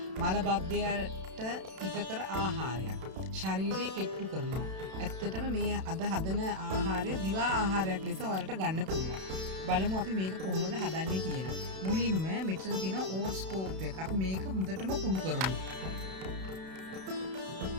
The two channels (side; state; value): left; late; 32 ms